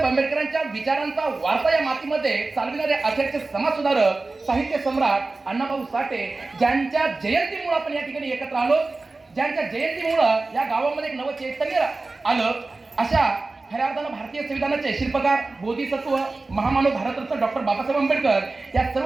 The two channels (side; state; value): left; quieter; 3.5 dB